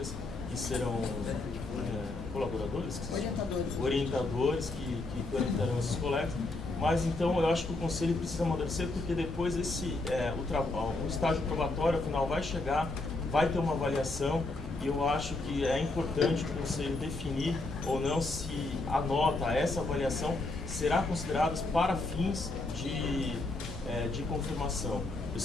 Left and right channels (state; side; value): quieter; right; 3.1 dB